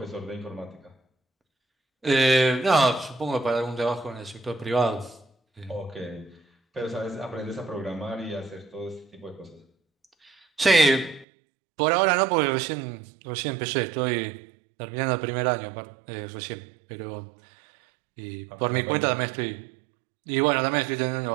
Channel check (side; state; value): left; drops out; at 11.2 s